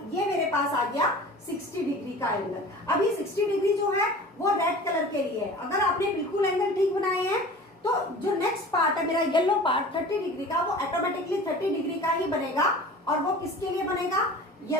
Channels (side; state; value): both; normal; correlation 0.40